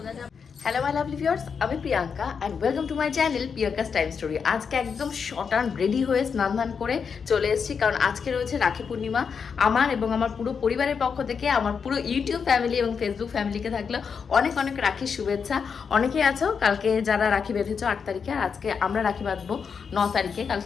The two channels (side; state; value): right; quieter; 6.2 dB